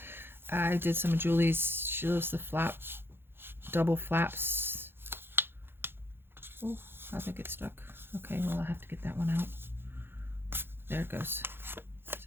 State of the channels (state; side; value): late; left; 0.10 ms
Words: I did some of Julie's, she loves the double flaps. Oh, I think it's stuck. Okay, well, I have to get that one out. There it goes. So